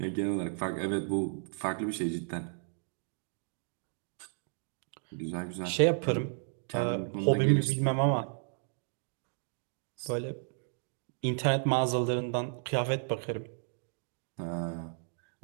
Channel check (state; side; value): silent; left; 55 dB below the other